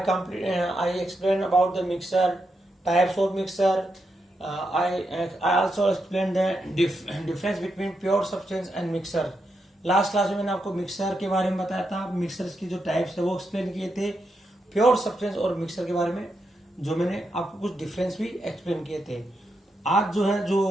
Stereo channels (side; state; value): both; normal; correlation 0.84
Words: explained about the mixer, types of mixer. I also explained the difference between pure substance and mixer. Last class में मैंने आपको mixer के बारे में बताया था, mixer की जो टाइप्स है वो एक्सप्लेन किए थे, प्योर सब्सटेंस और मिक्सर के बारे में जो मैंने आपको कुछ डिफरेंस भी एक्सप्लेन किए थे। आज